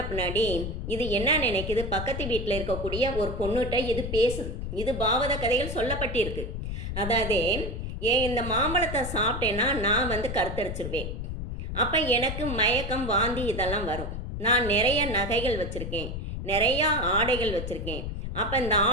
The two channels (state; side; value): noise; left; rumble, 5 dB below the sound